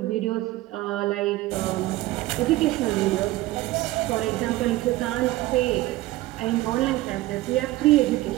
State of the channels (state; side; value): quieter; left; 17.3 dB